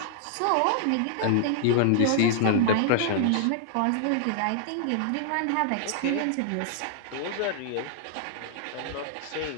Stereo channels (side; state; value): both; different; correlation -0.01